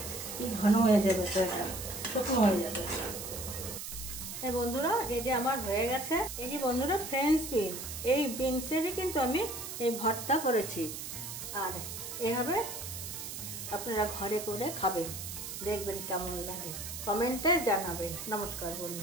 কি ঘন হয়ে যাবে, তো এটা শুকনো হয়ে যাবে। বন্ধুরা, এই যে আমার হয়ে গেছে। এই যে বন্ধুরা, ফ্রেঞ্চ বিন, এই বিনসেরই কিন্তু আমি এই ভর্তা করেছি। আর এভাবে আপনারা ঘরে করে খাবেন, দেখবেন কেমন লাগে, কমেন্টে জানাবেন। নমস্কার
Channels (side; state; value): right; noise; hiss, 7 dB below the sound